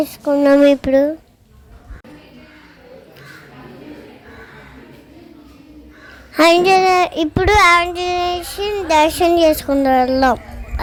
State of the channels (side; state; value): both; identical; correlation 1.00